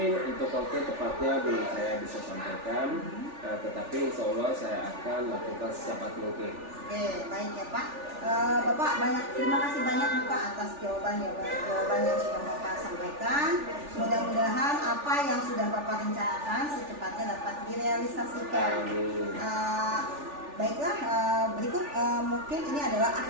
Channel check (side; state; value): left; late; 3.4 ms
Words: untuk waktu tepatnya belum saya bisa sampaikan, tetapi insya Allah saya akan lakukan secepat mungkin. Oke, baik ya Pak. Bapak terima kasih banyak nih Pak atas jawaban yang sudah Bapak sampaikan. Mudah-mudahan apa yang sudah Bapak rencanakan secepatnya dapat direalisasikan. Baiklah, berikut mungkin ini adalah